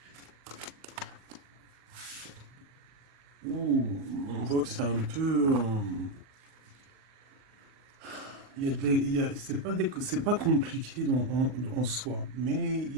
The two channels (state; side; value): late; left; 39 ms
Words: Oh, on voit que c'est un peu... c'est pas compliqué en soi, mais il